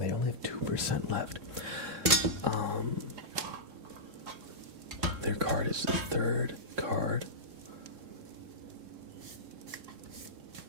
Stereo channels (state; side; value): late; left; 3.6 ms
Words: only have 2% left. Their card is the third card.